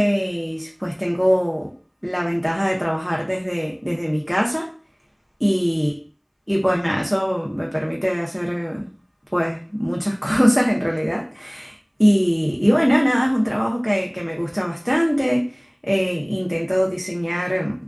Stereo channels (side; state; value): both; identical; correlation 1.00